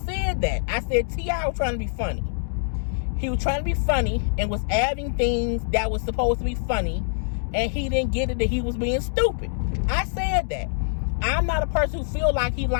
that. I said T.I. was trying to be funny. He was trying to be funny and was adding things that was supposed to be funny, and he didn't get it that he was being stupid. I said that. I'm not a person who feel like he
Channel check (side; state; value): right; silent; digital silence